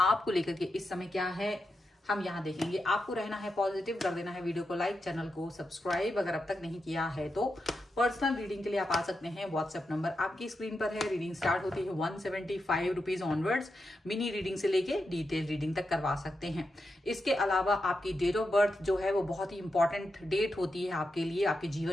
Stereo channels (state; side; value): normal; both; correlation 0.87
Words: लेकर के इस समय क्या है हम यहाँ देखेंगे। आपको रहना है पॉजिटिव, कर देना है वीडियो को लाइक, चैनल को सब्सक्राइब अगर अब तक नहीं किया है तो। पर्सनल रीडिंग के लिए आप आ सकते हैं, व्हाट्सएप नंबर आपकी स्क्रीन पर है। रीडिंग स्टार्ट होती है 175 रुपीज ऑनवर्ड्स। मिनी रीडिंग से लेके डिटेल रीडिंग तक करवा सकते हैं। इसके अलावा आपकी डेट ऑफ बर्थ जो है वो बहुत ही इंपॉर्टेंट डेट होती है आपके लिए, आपके